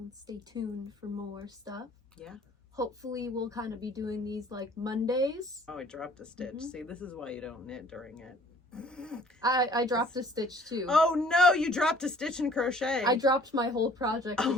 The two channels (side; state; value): both; normal; correlation 0.54